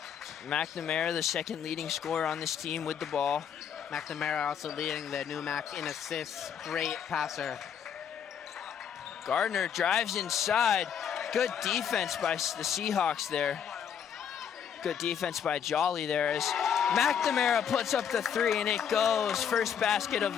McNamara, the second leading scorer on this team with the ball. McNamara also leading the NEWMAC in assists. Great passer. Gardner drives inside. Good defense by the Seahawks there. Good defense by Jolly there as McNamara puts up the three and it goes. First basket of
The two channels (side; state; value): right; quieter; 8.2 dB